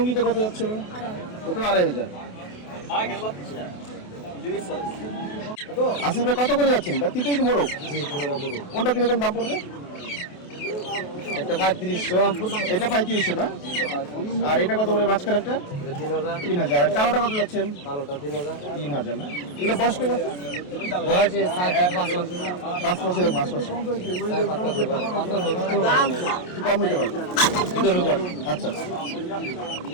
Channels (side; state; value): right; late; 28 ms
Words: কত যাচ্ছে? ওটা 2500। আসিফ ভাই কত করে যাচ্ছেন? তিনটাই কি মোরগ? কোনটা কিরকম দাম পড়বে? একটা 3500, এটা 3500 না? আর এটা কত করে মাঝখানে একটা? 3000। আর কালোটা কত যাচ্ছেন? ভালোটা 3000। 3000 না? এগুলো বয়স কেমন আছে? বয়সে 4-5 মাস। 5 মাসের 5 মাস। 4-5 মাস। একটু কম হতে পারে। আচ্ছা আচ্ছা।